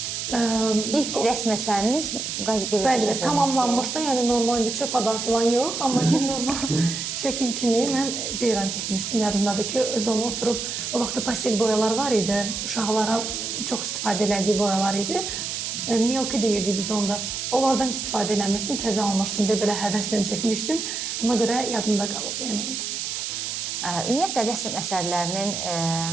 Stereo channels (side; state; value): right; noise; hiss, 4 dB below the sound